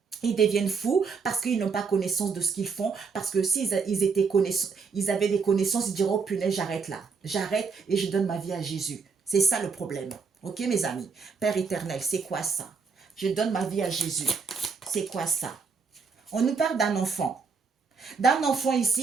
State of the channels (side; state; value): left; quieter; 5.2 dB